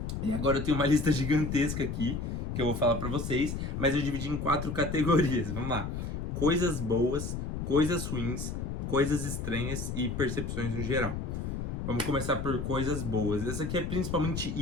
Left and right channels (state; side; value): noise; left; rumble, 4 dB below the sound